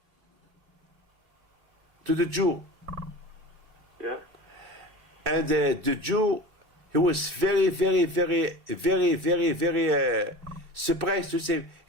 to the Jew. Yeah. And the Jew, he was very, very, very, very, very, very surprised to see him.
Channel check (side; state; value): left; late; 2.2 ms